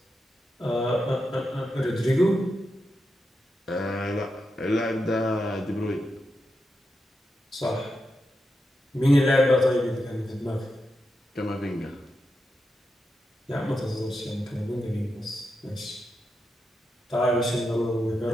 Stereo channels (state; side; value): normal; both; correlation 0.87